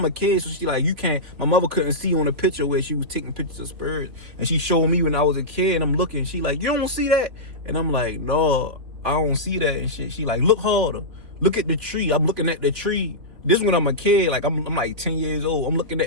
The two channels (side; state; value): left; late; 3.7 ms